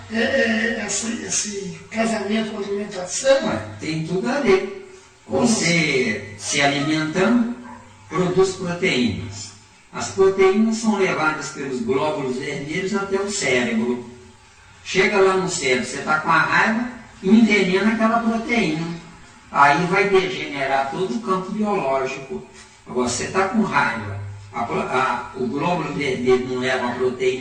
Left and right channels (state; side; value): identical; both; correlation 1.00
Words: esse casamento com a alimentação? Tem tudo a ver. Você se alimentando, produz proteínas. As proteínas são levadas pelos glóbulos vermelhos até o cérebro. Chega lá no cérebro, você está com a raiva, envenena aquela proteína. Aí vai degenerar todo o campo biológico. Agora, você está com raiva, o glóbulo vermelho não leva